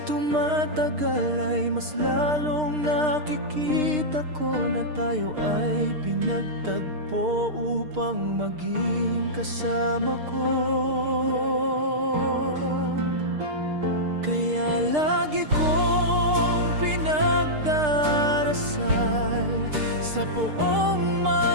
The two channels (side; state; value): left; late; 6.6 ms